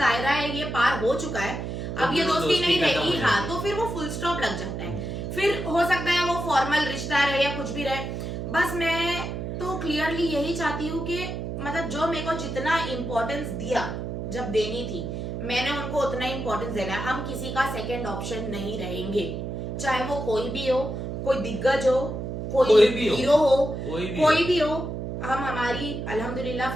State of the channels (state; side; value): noise; right; hum, 5 dB below the sound